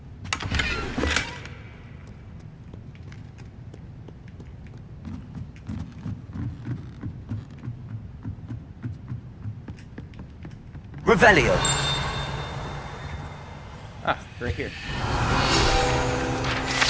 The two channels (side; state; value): both; identical; correlation 1.00